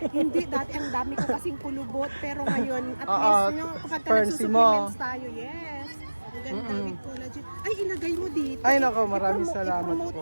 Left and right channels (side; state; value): both; inverted; correlation -1.00